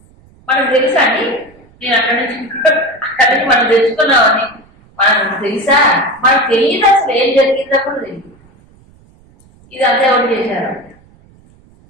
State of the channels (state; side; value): noise; right; rumble, 29 dB below the sound